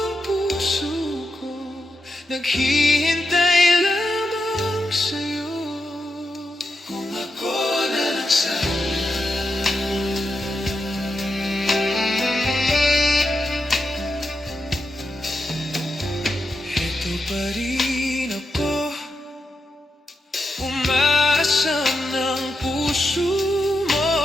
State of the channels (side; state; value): both; normal; correlation 0.86